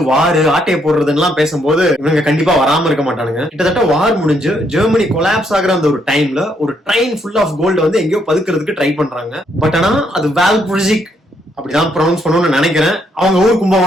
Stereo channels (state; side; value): normal; both; correlation 0.73